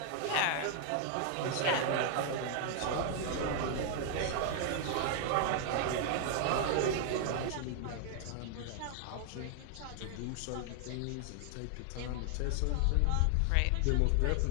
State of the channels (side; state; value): both; different; correlation 0.00